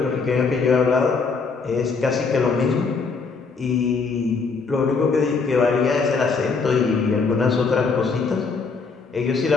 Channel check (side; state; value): right; quieter; 4.8 dB